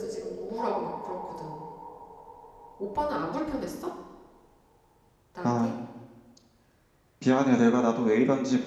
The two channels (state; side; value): identical; both; correlation 1.00